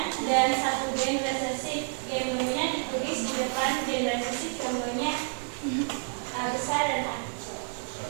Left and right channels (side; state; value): left; silent; 56 dB below the other